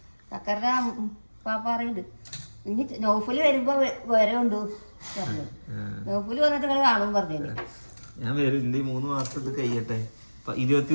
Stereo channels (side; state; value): both; inverted; correlation -1.00